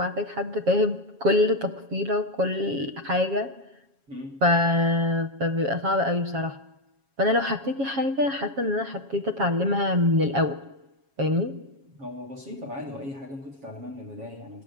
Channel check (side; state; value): left; late; 7.3 ms